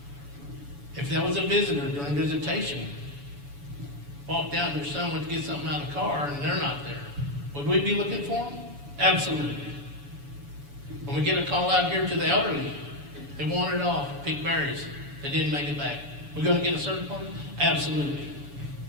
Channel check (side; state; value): left; late; 7.0 ms